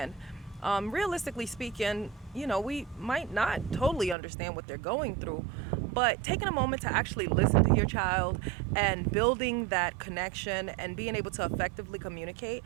Realistically speaking, we might not totally understand what they're going through, but taking a moment to actually listen to your child and building that connection and being able to effectively communicate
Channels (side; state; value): left; drops out; at 4.2 s